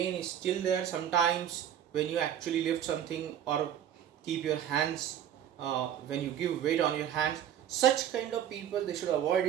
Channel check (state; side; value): quieter; left; 10.1 dB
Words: is still there. Sometimes when you actually lift something or keep your hands, when you give weight on your hands, such kind of people, they should avoid